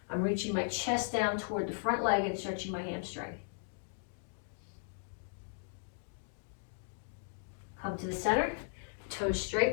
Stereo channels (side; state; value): right; silent; digital silence